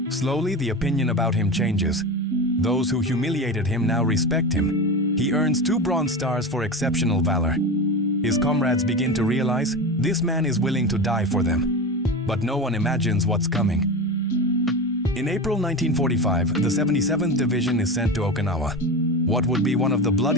Slowly, the opinion about him changes. Those who humiliated him now respect him. He earns 2 Bronze Stars for exceptional valor. His comrades begin to realize this man is willing to die for them. But no one imagines what's coming. In April 1945, the 77th Division is sent to Okinawa, what would be one of the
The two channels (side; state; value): both; normal; correlation 0.24